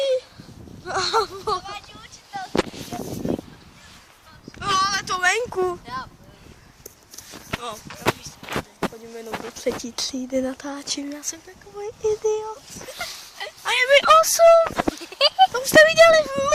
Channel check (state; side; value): identical; both; correlation 1.00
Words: No, ale to venku. No, chodím jenom do 3. třídy, natáčím, já jsem takový idiot. A je mi 8. To už jste viděli v